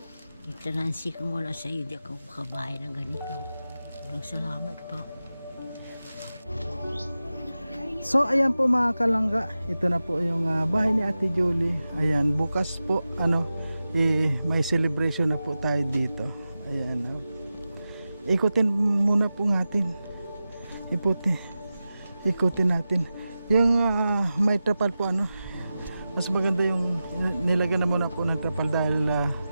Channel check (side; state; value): both; inverted; correlation -0.93